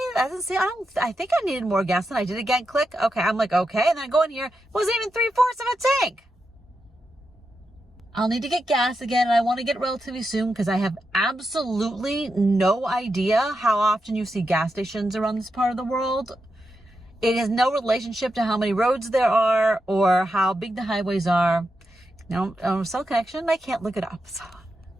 That doesn't seem, I think I needed more gas than I did. Again, click. Okay. I'm like, okay. And then I go in here, it wasn't even 3/4 of a tank. I'll need to get gas again, and I want to get relatively soon because I have absolutely no idea how often you see gas stations around this part of the world. It has no relationship to how many roads there are or how big the highways are. No, cell connection, I can't look it up. So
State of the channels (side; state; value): both; normal; correlation 0.87